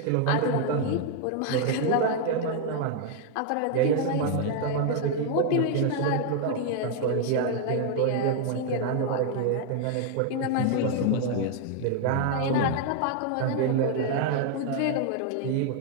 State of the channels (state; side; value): different; both; correlation 0.00